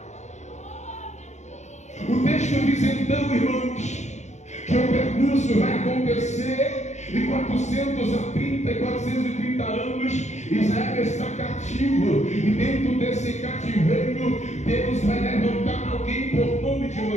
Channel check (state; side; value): late; right; 0.34 ms